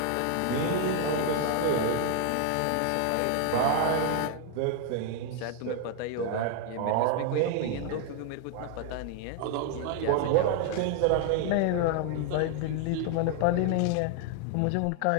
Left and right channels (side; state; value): both; different; correlation 0.00